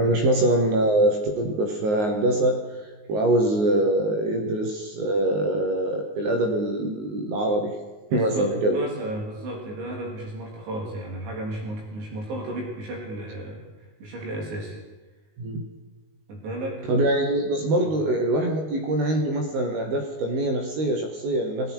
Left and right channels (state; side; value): late; left; 19 ms